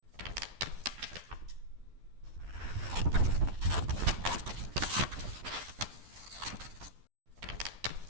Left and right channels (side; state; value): left; late; 12 ms